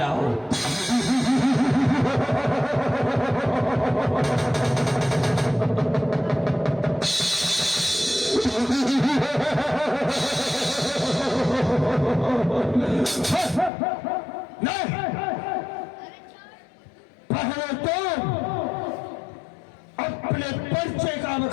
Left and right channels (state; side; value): drops out; right; at 13.7 s